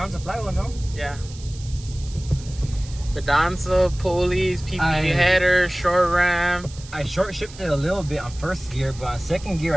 flywheel, no? Yeah. Fidanza, pulleys, PPD header, short ram. I short shifted a little bit on first gear, but on second gear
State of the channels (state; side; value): noise; right; hiss, 18 dB below the sound